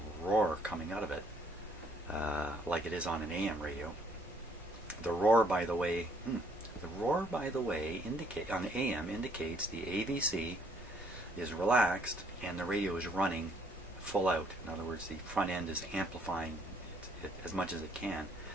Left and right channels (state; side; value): normal; both; correlation 0.65